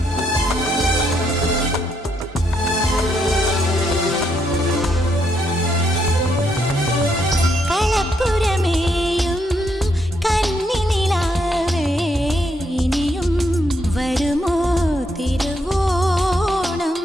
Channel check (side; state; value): both; normal; correlation 0.76